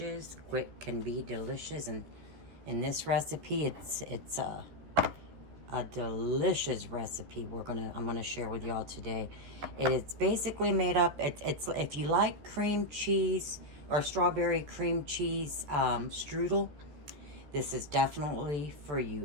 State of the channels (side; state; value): left; late; 14 ms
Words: Quick can be delicious, and in this recipe it's a delicious recipe I'm gonna share with y'all today. It's basically made up, it's if you like cream cheese or strawberry cream cheese strudel, this is definitely for you.